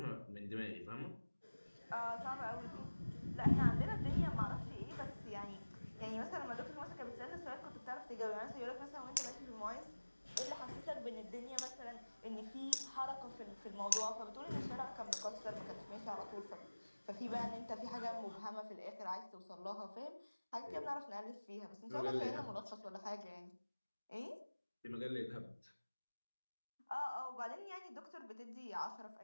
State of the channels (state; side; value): inverted; both; correlation -1.00